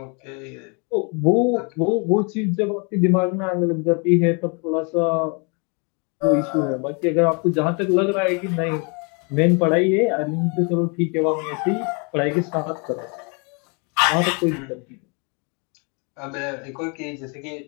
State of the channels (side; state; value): right; quieter; 34.3 dB